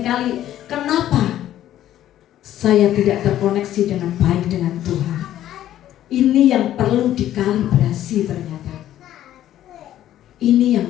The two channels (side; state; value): right; quieter; 12.4 dB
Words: kenapa saya tidak terkoneksi dengan baik dengan Tuhan. Ini yang perlu dikalibrasi ternyata. Ini yang